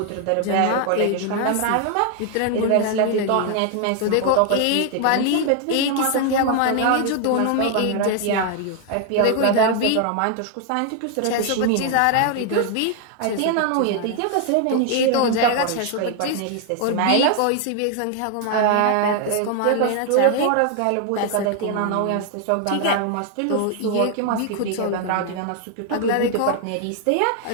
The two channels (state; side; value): different; both; correlation 0.00